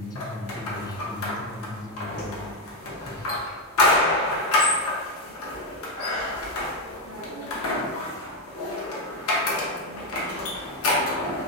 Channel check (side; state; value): both; normal; correlation 0.05